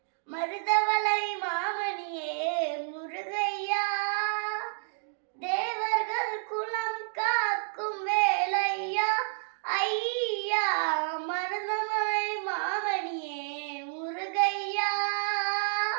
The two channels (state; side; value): silent; left; digital silence